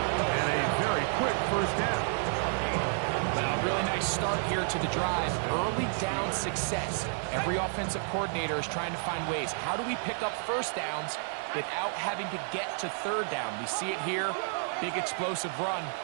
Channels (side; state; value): left; silent; 57 dB below the other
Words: a very quick first down. Well, really nice start here to the drive. Early down success. Every offensive coordinator is trying to find ways. How do we pick up first downs without having to get to third down? We see it here. Big explosive run.